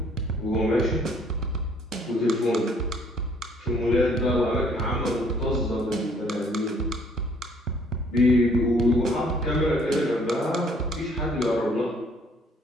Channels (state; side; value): normal; both; correlation 0.61